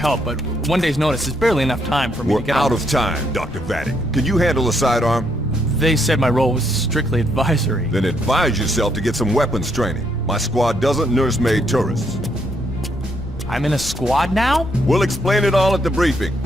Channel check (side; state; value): left; noise; rumble, 14 dB below the sound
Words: but one day's notice is barely enough time for me to We're get out of time, Dr. Vadek. Can you handle a sidearm? They said my role was strictly advisory. Then advise yourself to get some weapons training. My squad doesn't nursemaid tourists. I'm in a squad now? We'll explain it all at the briefing.